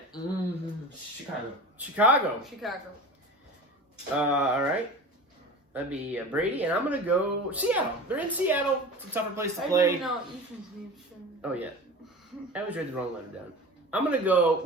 Chicago. All right. That'd be Brady, and I'm going to go Seattle. They're in Seattle. It's a tougher place to I play. didn't know Ethan's name. Oh, yeah. I always read the wrong letter down. I'm going to go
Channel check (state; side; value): normal; both; correlation 0.34